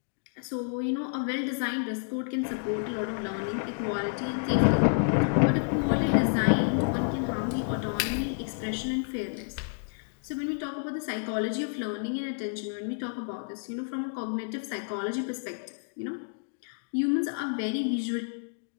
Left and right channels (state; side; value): silent; right; digital silence